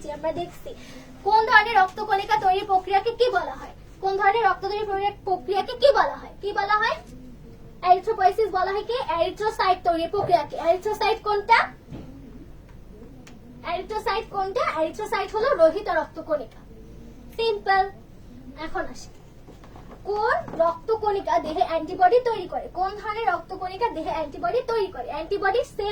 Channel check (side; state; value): both; identical; correlation 1.00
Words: যে আমরা দেখছি কোন ধরনের রক্তকণিকা তৈরির প্রক্রিয়াকে কি বলা হয়? কোন ধরনের রক্ত তৈরির প্রক্রিয়াকে কি বলা হয়? কি বলা হয়? এরিথ্রোপয়েসিস বলা হয় কি এরিথ্রোসাইট তৈরির প্রক্রিয়াকে। এরিথ্রোসাইট কোনটা? এরিথ্রোসাইট কোনটা? এরিথ্রোসাইট হলো রোহিত রক্তকণিকা। সিম্পল। এখন আসি কোন রক্তকণিকা দেহে অ্যান্টিবডি তৈরি করে? কোন ধরনের রক্তকণিকা দেহে অ্যান্টিবডি তৈরি করে? অ্যান্টিবডি